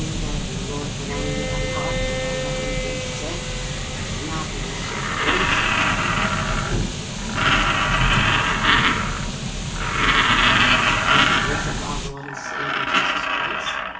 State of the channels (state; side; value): identical; both; correlation 1.00